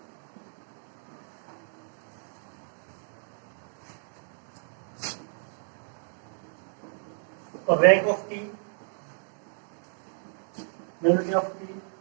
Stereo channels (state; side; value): silent; left; digital silence